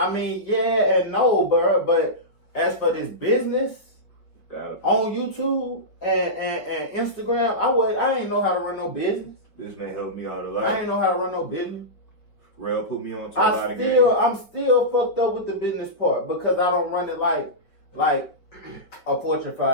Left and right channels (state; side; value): late; right; 4.9 ms